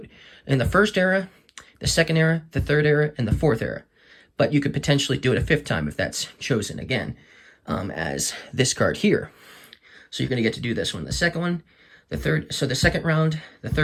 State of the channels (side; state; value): both; identical; correlation 1.00